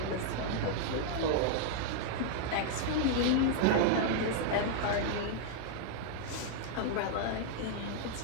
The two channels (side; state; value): both; different; correlation -0.01